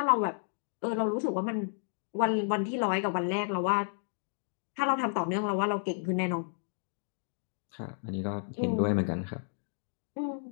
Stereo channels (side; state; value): right; silent; digital silence